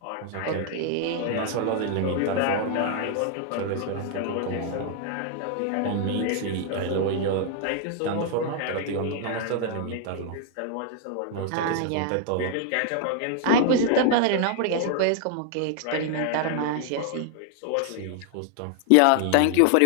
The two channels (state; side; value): different; both; correlation 0.00